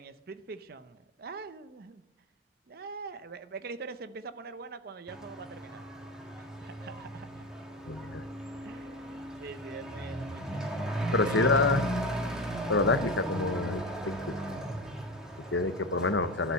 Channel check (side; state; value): both; normal; correlation 0.23